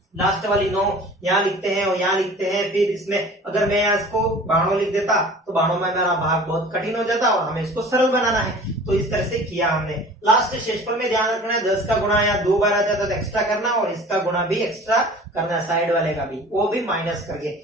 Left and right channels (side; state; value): both; normal; correlation 0.44